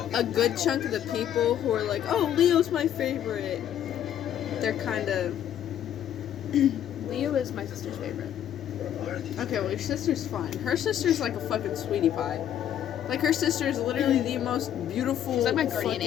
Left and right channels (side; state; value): right; quieter; 10.5 dB